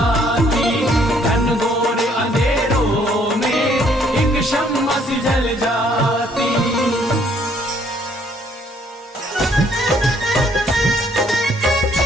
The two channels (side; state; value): both; normal; correlation 0.65